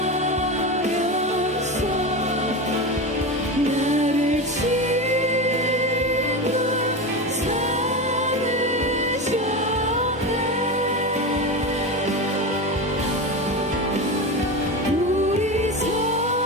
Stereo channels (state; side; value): normal; both; correlation 0.21